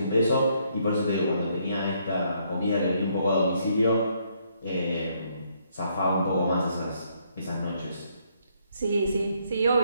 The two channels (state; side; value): inverted; both; correlation -0.71